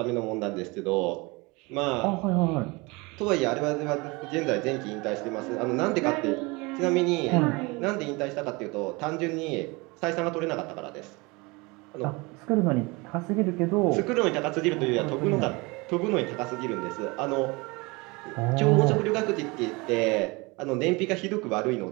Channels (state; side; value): quieter; left; 25.7 dB